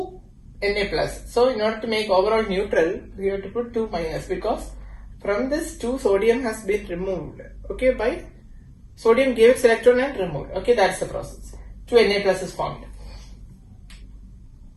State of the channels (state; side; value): identical; both; correlation 1.00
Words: Na plus. So in order to make overall neutral, we have to put 2 minus because from this 2 sodium has been removed. Okay, by sodium gave its electron and removed. Okay, that's the process. 2 Na plus is formed.